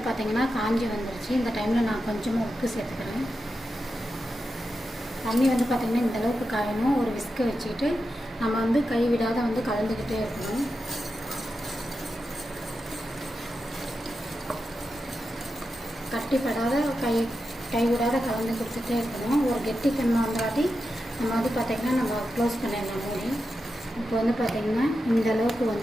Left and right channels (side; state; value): both; normal; correlation 0.89